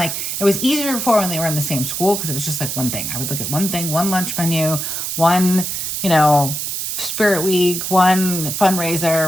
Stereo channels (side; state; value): right; noise; hiss, 3 dB below the sound